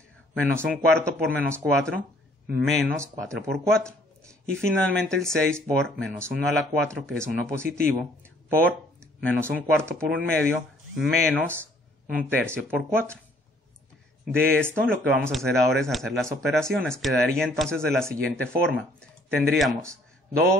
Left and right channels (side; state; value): both; normal; correlation 0.61